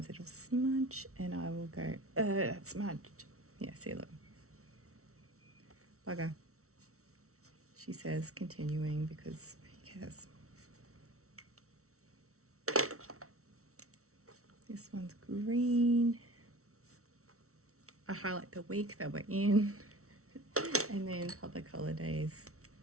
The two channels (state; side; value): late; left; 0.63 ms